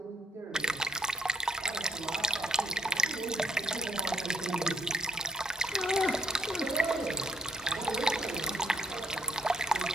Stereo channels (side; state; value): both; normal; correlation 0.69